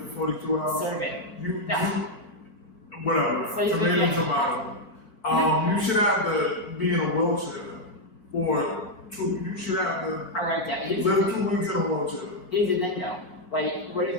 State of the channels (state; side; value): late; right; 4.6 ms